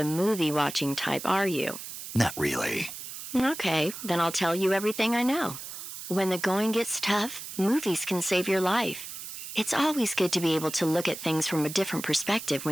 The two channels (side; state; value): right; noise; hiss, 10 dB below the sound